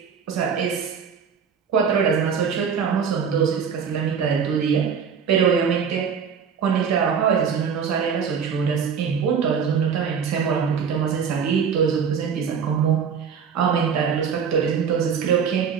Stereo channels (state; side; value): quieter; left; 6.7 dB